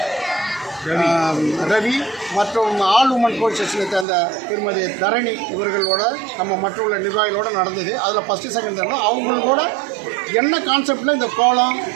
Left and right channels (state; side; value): drops out; left; at 4.0 s